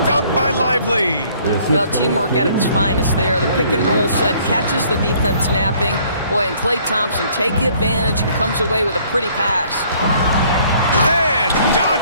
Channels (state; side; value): inverted; both; correlation -0.60